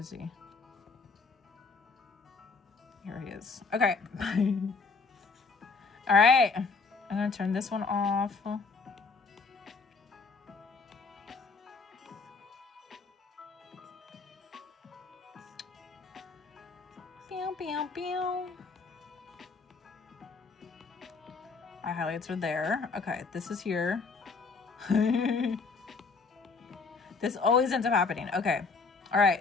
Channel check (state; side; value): quieter; right; 4.4 dB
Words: he? Here he is. Okay. All right. I'm gonna turn this one off. Pew, pew, pew. My highlights are there. Okay, this is here. This always ends up happening. Okay. All